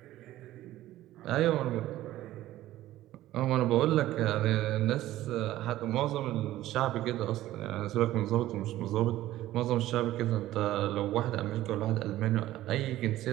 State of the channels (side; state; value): left; quieter; 14.9 dB